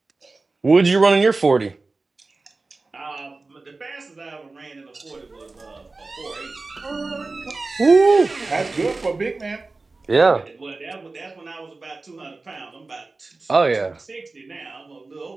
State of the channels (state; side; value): quieter; left; 3.5 dB